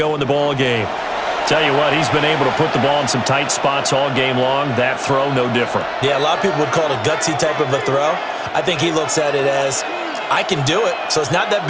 in the ball game. Tell you what, he's been able to put the ball in some tight spots all game long. That throw, no different. Yeah, a lot of people would call it a gutsy type of a throw. I think he looks at it as, I can do it, so it's not that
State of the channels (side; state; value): both; identical; correlation 1.00